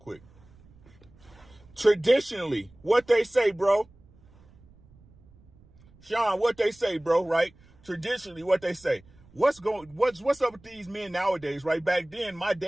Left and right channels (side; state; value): right; noise; rumble, 27 dB below the sound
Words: Traditionally, what they say, bro. Sean, what they say, bro, right? Traditionally, what they say. What's up with these men nowadays, right? Back then, my